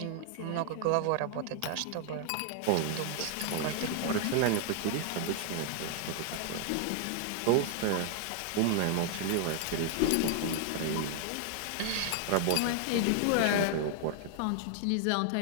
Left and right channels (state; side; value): different; both; correlation 0.00